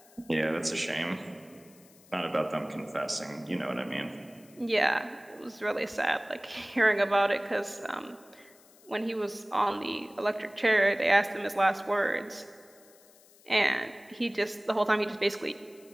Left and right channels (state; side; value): noise; left; hiss, 26 dB below the sound